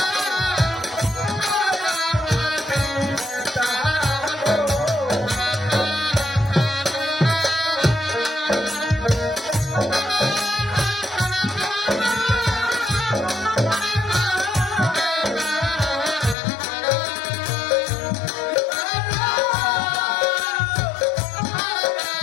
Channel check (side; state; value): right; drops out; at 16.4 s